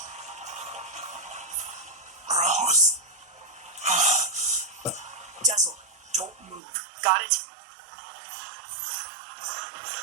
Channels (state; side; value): drops out; left; at 6.6 s